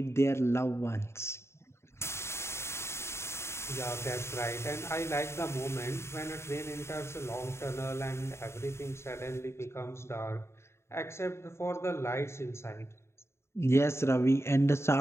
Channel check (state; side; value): late; right; 0.13 ms